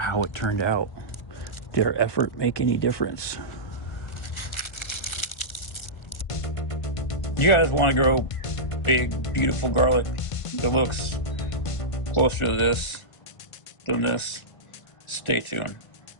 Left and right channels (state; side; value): late; right; 1.5 ms